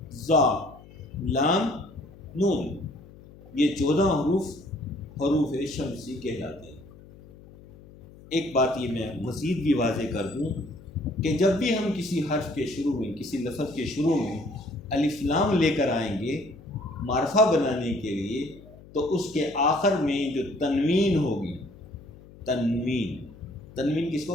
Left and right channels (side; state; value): left; noise; hum, 21 dB below the sound